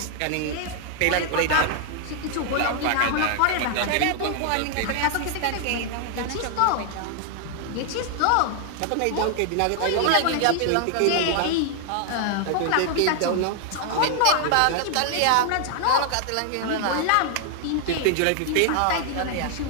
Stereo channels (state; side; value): different; both; correlation 0.00